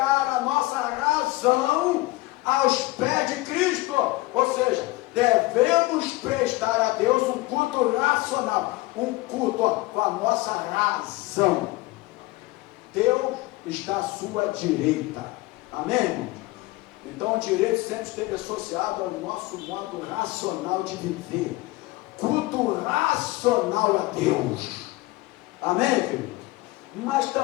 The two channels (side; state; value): right; quieter; 20.5 dB